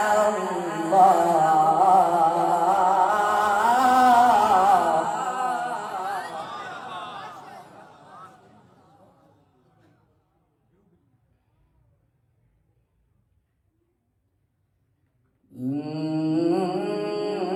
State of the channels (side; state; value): both; identical; correlation 1.00